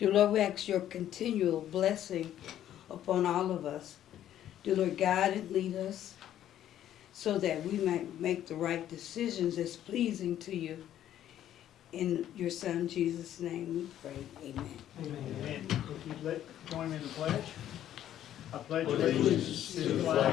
Lord, we ask your continual blessing upon all of us. Dear Lord, guide and lead us so that we might make the right decisions that's pleasing to you. In your Son, Jesus' name, we pray. Amen. Amen. If you'd join me in the pledge. I pledge allegiance to the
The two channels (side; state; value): right; quieter; 11.5 dB